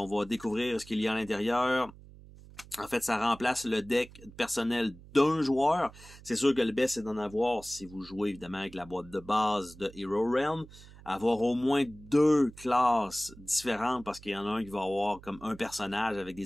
va découvrir ce qu'il y a à l'intérieur. En fait, ça remplace le deck personnel d'un joueur. C'est sûr que le best, c'est d'en avoir, si vous jouez évidemment avec la boîte de base de Hero Realm, avoir au moins deux classes différentes, parce qu'il y en a un qui va avoir comme un personnage avec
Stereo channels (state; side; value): noise; right; hum, 20 dB below the sound